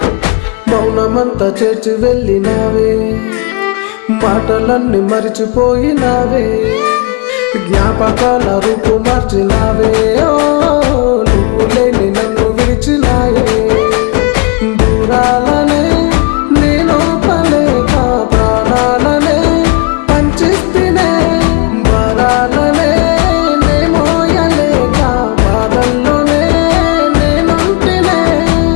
మౌనమంతా చేర్చి వెళ్ళినావే, మాటలన్నీ మరిచిపోయినావే, జ్ఞాపకాల రూపు మార్చినావే. ఓ నువ్వు లేని నన్ను విడిచినాయే, దూరాలనే నేను పలేక ప్రాణాలనే పంచిస్తేనే, వరాలనే నేమోయలేక బాధల్లోనే నేనుంటినే.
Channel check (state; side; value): quieter; right; 31.5 dB